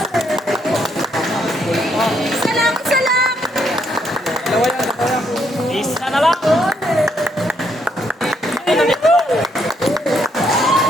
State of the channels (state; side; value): normal; both; correlation 0.73